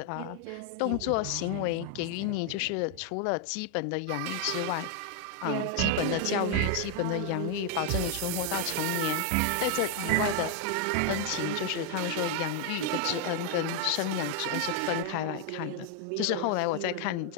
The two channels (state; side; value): different; both; correlation 0.00